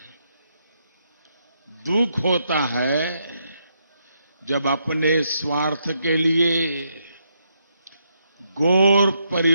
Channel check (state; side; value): inverted; both; correlation -0.78